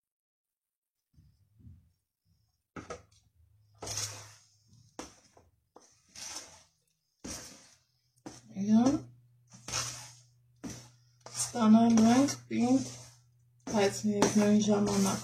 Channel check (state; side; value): identical; both; correlation 1.00